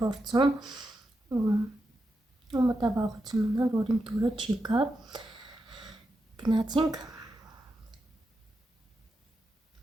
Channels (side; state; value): both; normal; correlation 0.87